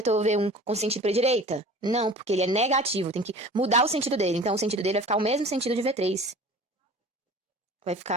V1 com sentido para a direita? Não, porque ele é negativo, tem que mudar o sentido dele. Então, o sentido dele vai ficar o mesmo sentido de V3. Vai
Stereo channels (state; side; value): normal; both; correlation 0.42